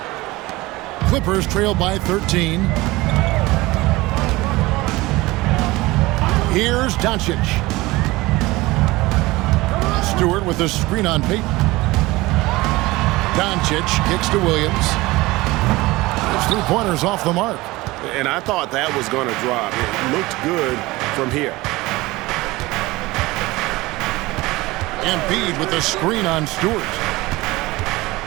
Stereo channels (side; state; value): left; quieter; 20.4 dB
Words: Clippers trail by 13. Here's Doncic. Stewart with a screen on Payton. Doncic kicks to Williams. His 3-pointers off the mark. And I thought that was going to drop. It looked good from here. Embiid with a screen on Stewart.